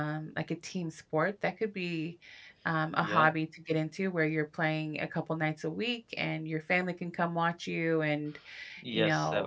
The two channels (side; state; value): both; identical; correlation 1.00